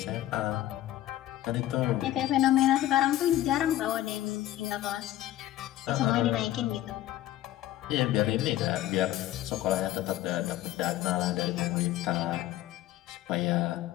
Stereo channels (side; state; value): right; quieter; 13.9 dB